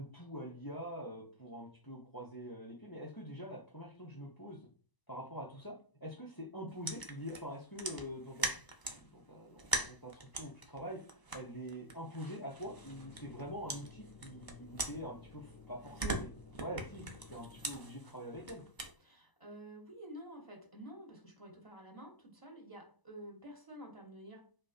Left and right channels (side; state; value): right; late; 1.0 ms